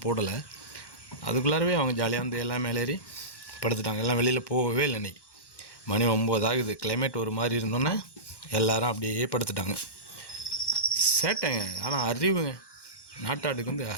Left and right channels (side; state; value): right; late; 1.1 ms